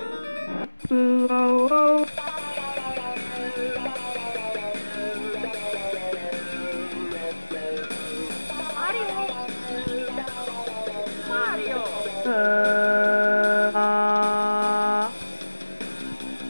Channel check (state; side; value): inverted; both; correlation -1.00